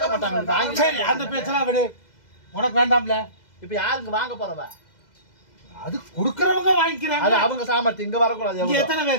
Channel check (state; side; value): late; right; 2.0 ms